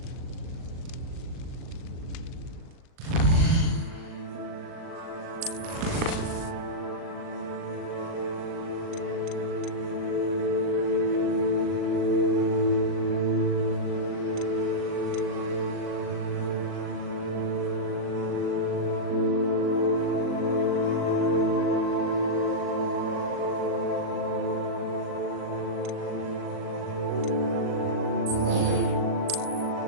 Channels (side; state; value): left; late; 40 ms